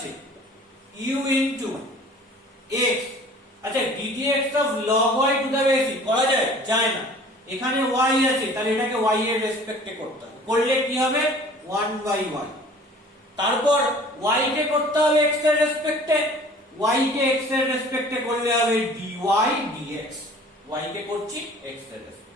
u into x। আচ্ছা ddx of log y to the base e করা যায় যায় না, এখানে y আছে, তাহলে এটাকে y এর রেসপেক্টে করতে হবে, করলে কি হবে 1/y। তারপর y কে করতে হবে x এর রেসপেক্টে, y কে x এর রেসপেক্টে করলে হবে dy dx, y কে করছি x এর রেসপেক্টে।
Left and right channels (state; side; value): normal; both; correlation 0.48